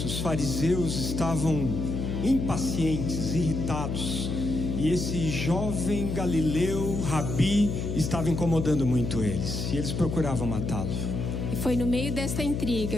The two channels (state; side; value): noise; left; hum, 2 dB below the sound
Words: Os fariseus estavam impacientes, irritados. E esse jovem galileu, Rabi, estava incomodando muito eles. E eles procuravam matá-lo. E foi no meio desta